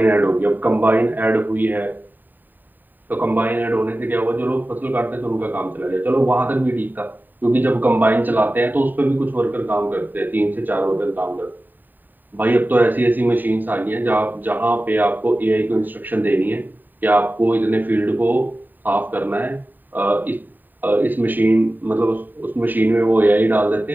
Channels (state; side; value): late; left; 0.089 ms